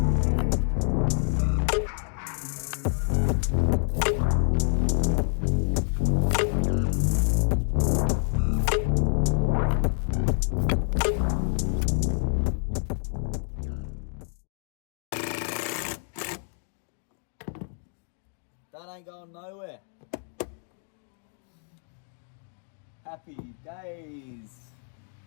That ain't going nowhere. Happy days.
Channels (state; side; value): silent; right; 58 dB below the other